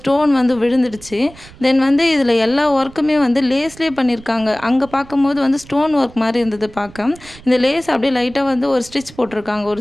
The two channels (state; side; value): noise; right; rumble, 21 dB below the sound